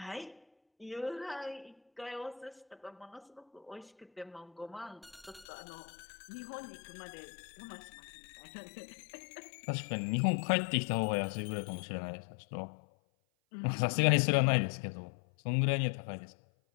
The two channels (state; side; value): drops out; right; at 5.5 s